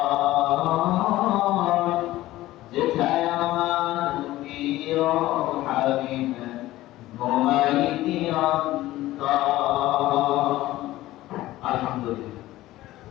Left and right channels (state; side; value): quieter; right; 16.3 dB